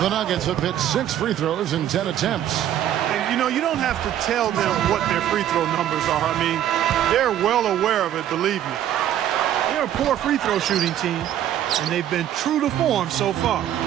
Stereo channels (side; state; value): left; quieter; 11.3 dB